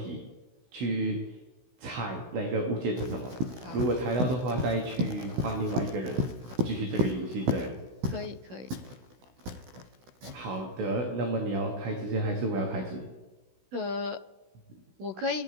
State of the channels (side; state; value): left; late; 16 ms